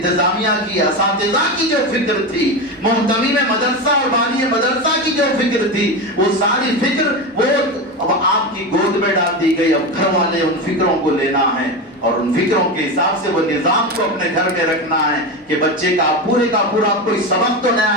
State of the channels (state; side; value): normal; both; correlation 0.19